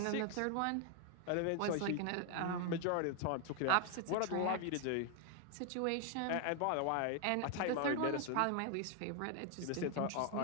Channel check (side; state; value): both; different; correlation 0.00